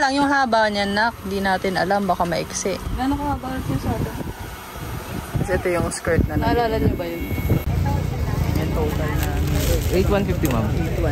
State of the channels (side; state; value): both; identical; correlation 1.00